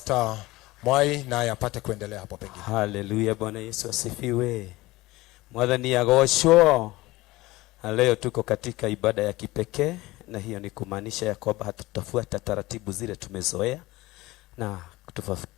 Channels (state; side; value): quieter; right; 19.6 dB